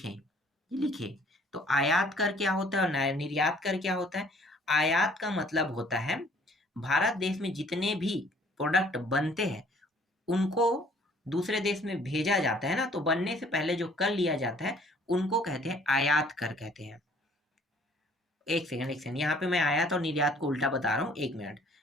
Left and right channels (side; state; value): both; normal; correlation 0.57